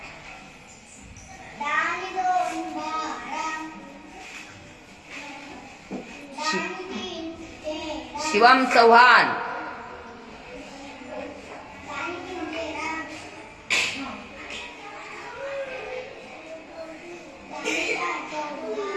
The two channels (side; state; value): both; identical; correlation 1.00